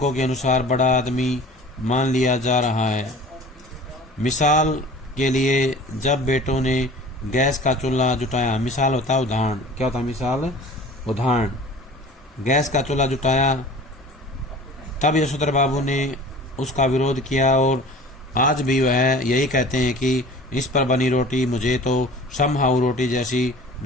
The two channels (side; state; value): both; normal; correlation 0.43